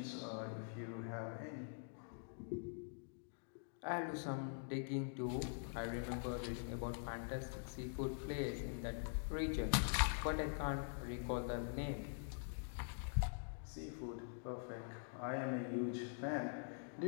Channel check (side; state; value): right; silent; digital silence